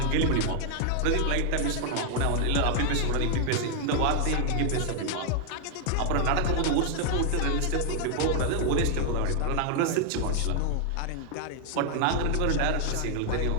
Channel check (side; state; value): both; different; correlation 0.00